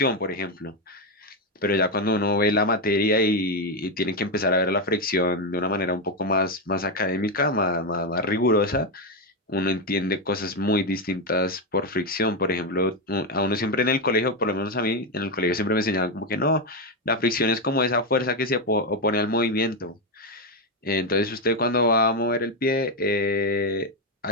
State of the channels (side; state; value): both; normal; correlation 0.07